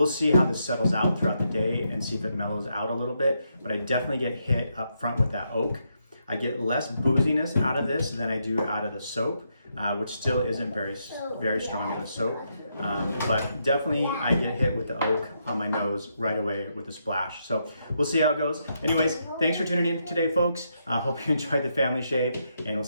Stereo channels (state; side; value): inverted; both; correlation -0.80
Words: see how this settles out throughout the day and see if it mellows out a little bit. But I definitely get hit up front with that oak. I get less booziness out of this than I do out of the soap, which still isn't very strong in the soap. But definitely I get hit with the oak on my nose right away with the splash. So we'll see how it goes. Anyways, thanks for tuning in today, folks. I hope you enjoyed the family shave, and we'll